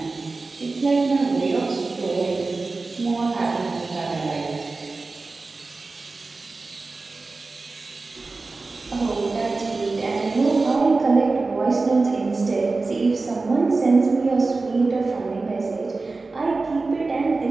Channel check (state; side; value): quieter; left; 3.7 dB